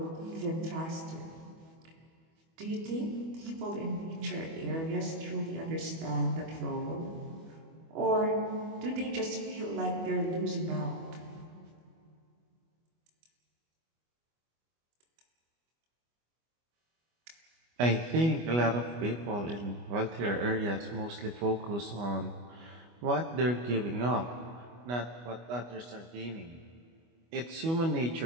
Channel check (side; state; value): left; late; 25 ms